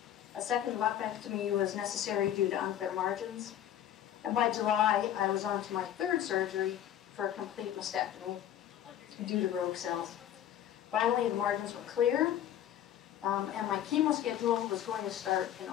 A second lumpectomy was necessary due to unclear margins. And by July, I was on to my 3rd surgery for a complete mastectomy due to rogue cells. Finally, the margins were clear, and my chemo schedule was going to start in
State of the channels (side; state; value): right; quieter; 10.9 dB